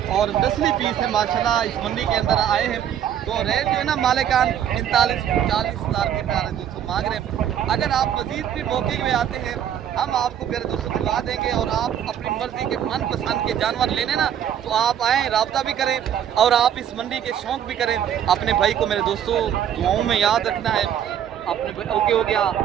और नस्ली पीस है माशाल्लाह इस मंडी के अंदर आए हैं। तो रेट जो है ना मालिकान 39-40,000 के प्यारे दोस्तों मांग रहे हैं। अगर आप मजीद भी मौके में आते हैं, हम आपको प्यारे दोस्तों दिलवा देंगे और आप अपनी मर्जी के मनपसंद के जानवर लेने ना तो आप आएँ, रब्ता भी करें और आप इस मंडी के शौक भी करें। अपने भाई को मेरे दोस्तों दुआओं में याद रखना है। अपने ओके हो गया,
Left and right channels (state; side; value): quieter; left; 9.8 dB